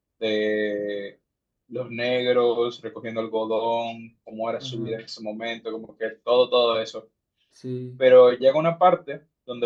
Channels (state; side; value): identical; both; correlation 1.00